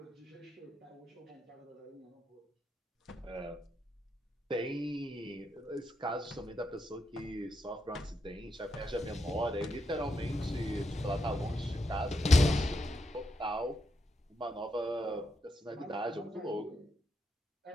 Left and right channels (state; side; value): normal; both; correlation 0.82